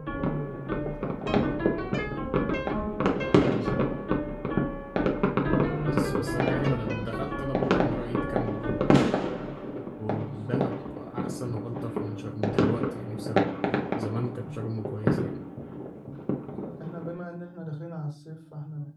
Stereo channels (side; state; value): both; identical; correlation 1.00